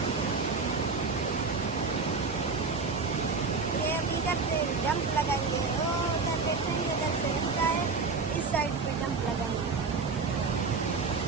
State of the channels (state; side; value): quieter; left; 4.5 dB